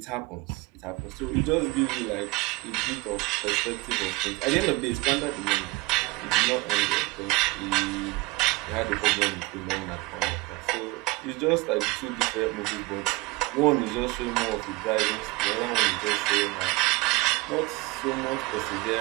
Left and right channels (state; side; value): quieter; left; 22.9 dB